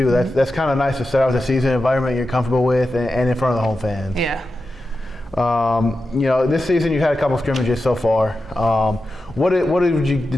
That's kind of nice to start out the season environment you're comfortable with and in front of the home fans. Yeah. This season you've had a couple scrimmages so far. What did the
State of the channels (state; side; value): normal; both; correlation 0.91